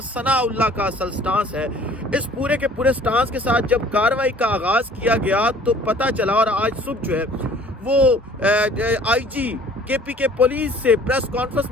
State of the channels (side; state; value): both; normal; correlation 0.52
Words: ثناء اللہ کا اصل سٹانس ہے۔ اس پورے کے پورے سٹانس کے ساتھ جب کارروائی کا آغاز کیا گیا تو پتہ چلا، اور آج صبح جو ہے وہ آئی جی کے پی کے پولیس سے پریس کانفرنس